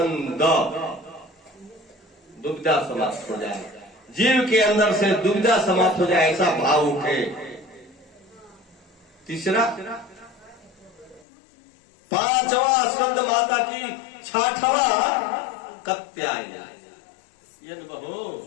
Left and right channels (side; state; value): right; drops out; at 11.2 s